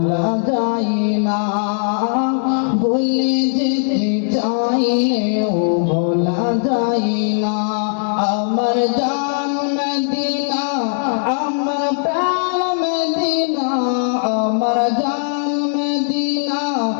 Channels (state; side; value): silent; right; digital silence